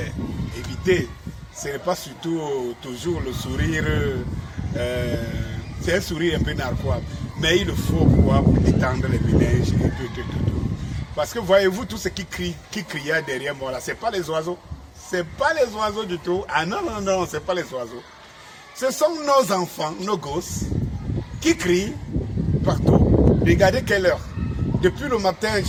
évitez. Ce n'est pas surtout toujours le sourire. C'est un sourire un peu narquois. Mais il le faut pour détendre les ménages et tout. Parce que voyez-vous, tout ce qui criait derrière moi là, ce n'est pas les oiseaux. Ce n'est pas les oiseaux du tout. Ah non, ce n'est pas les oiseaux. Ce sont nos enfants, nos gosses, qui crient partout. Regardez quelle heure. Depuis le matin,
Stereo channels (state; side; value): identical; both; correlation 1.00